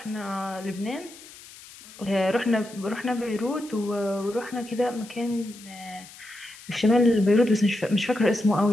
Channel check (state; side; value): noise; left; hiss, 19 dB below the sound